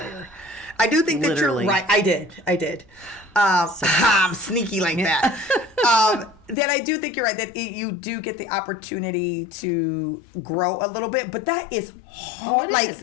I do think that Literally. you're right. I did. I'm sneaky like that. That I do think you're right, that you do get the opportunity to grow a little bit, but that is hard. Oh, it is.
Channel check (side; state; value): right; drops out; at 6.6 s